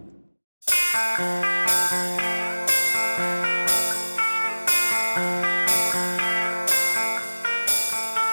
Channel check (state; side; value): inverted; both; correlation -1.00